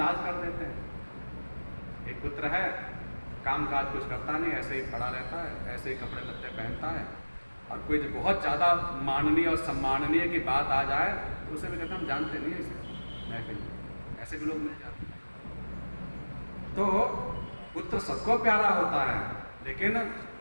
कर देते हैं। एक पुत्र है, काम काज कुछ करता नहीं, ऐसे ही पड़ा रहता है, ऐसे ही कपड़े लत्ते पहनता है, और कोई जो बहुत ज़्यादा माननीय और सम्माननीय की बात आ जाए तो उसे भी कहते हम जानते नहीं इसे, मैं कहीं, ऐसे भी लोग मिल जाते हैं। तो पुत्र सबको प्यारा होता है, लेकिन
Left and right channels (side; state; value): both; inverted; correlation -1.00